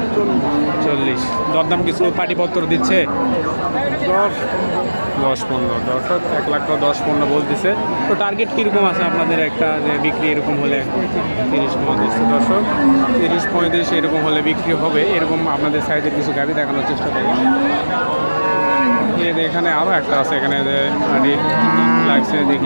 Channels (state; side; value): inverted; both; correlation -1.00